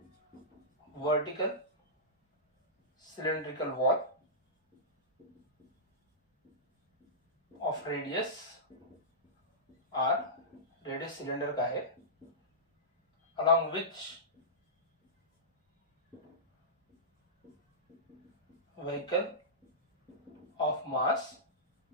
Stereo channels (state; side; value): normal; both; correlation -0.16